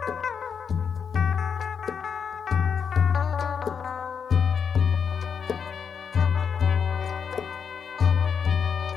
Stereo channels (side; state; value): right; quieter; 6.7 dB